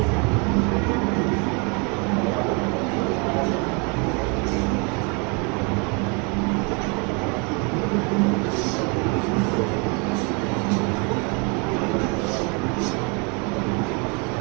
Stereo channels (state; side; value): quieter; left; 32.9 dB